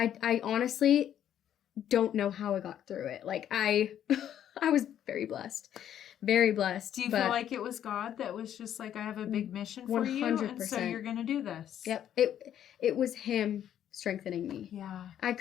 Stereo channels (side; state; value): right; quieter; 10.4 dB